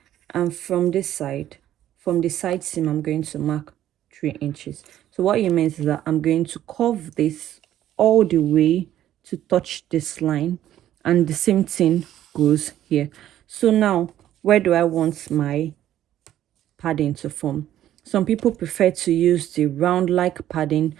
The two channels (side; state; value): left; quieter; 12.1 dB